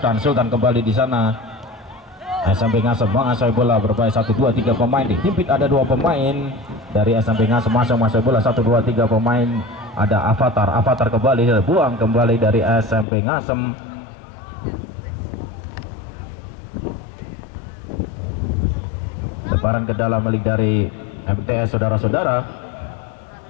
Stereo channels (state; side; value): drops out; right; at 13.1 s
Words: kembali di sana. SMP Ngasem menguasai bola berbahaya 1, 2, 3 pemain dihimpit. Ada 2 pemain dari SMP Ngasem masih menguasai bola 1, 2, 3 pemain. Ada Avatar kembali buang kembali dari SMP Ngasem. Lemparan ke dalam milik dari MTS saudara-saudara.